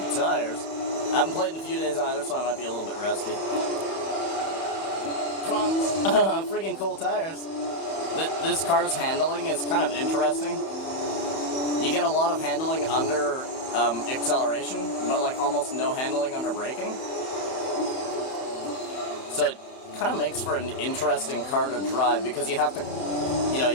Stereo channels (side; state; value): right; late; 31 ms